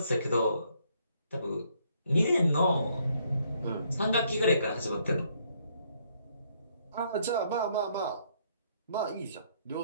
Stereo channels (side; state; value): both; inverted; correlation -0.69